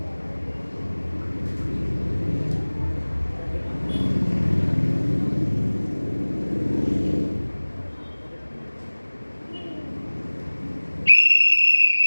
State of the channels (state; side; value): inverted; both; correlation -1.00